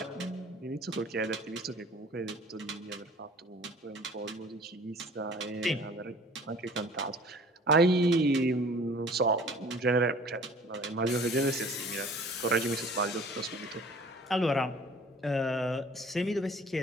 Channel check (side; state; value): both; normal; correlation 0.49